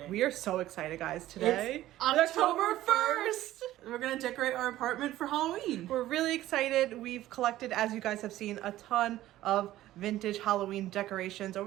We are so excited, guys. Today it's October 1st. We're going to decorate our apartment for Halloween. We're really excited. We've collected, as you guys have seen, a ton of vintage Halloween decorations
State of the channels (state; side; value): quieter; left; 14.6 dB